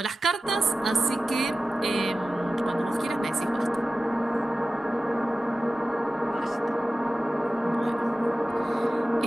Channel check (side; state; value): both; normal; correlation 0.95